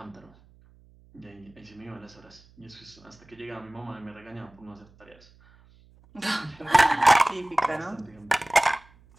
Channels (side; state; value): right; noise; hum, 27 dB below the sound